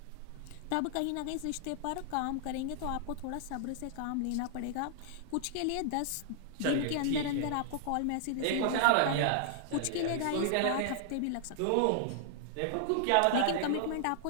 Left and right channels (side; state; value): both; different; correlation -0.01